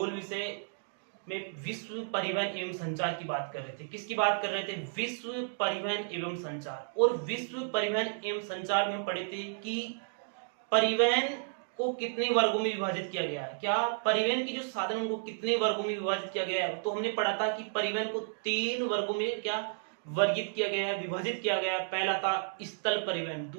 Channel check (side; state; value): left; silent; digital silence